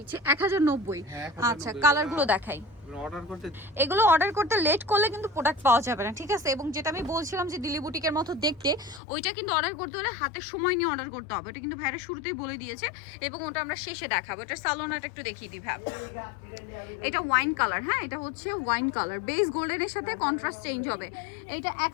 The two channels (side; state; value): right; drops out; at 9.0 s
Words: 1090। আচ্ছা, কালারগুলো দেখাই। এগুলো অর্ডার করতে লেট করলে কিন্তু প্রোডাক্ট পাওয়া যাবে না, ঠিক আছে? এবং যেটা আমি বলছিলাম যে দিল্লি বুটিকের মতো দেখতে, ওইটা কিন্তু অর্ডার করতে হলে হাতে সময় নিয়ে অর্ডার করতে হবে। এটা কিন্তু ভাইরা শুরুতেই বলে দিয়েছে এবং ওটা আমরা শেষে দেখাবো। এটা সালোনাটা একটু দেখিয়ে দিই ভাই। এটা ওয়াইন কালার, হ্যাঁ, এটা হচ্ছে ওয়াইন কালার, বেস গোল্ডেনের সাথে কন্ট্রাস্ট চেঞ্জ হবে। এটা